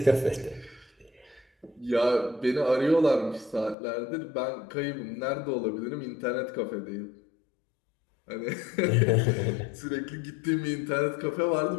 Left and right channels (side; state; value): right; drops out; at 3.8 s